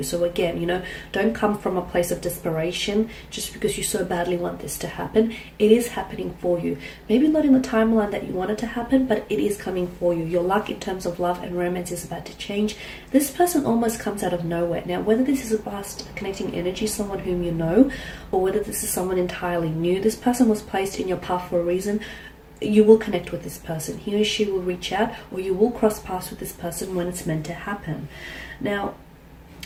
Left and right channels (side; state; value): both; identical; correlation 1.00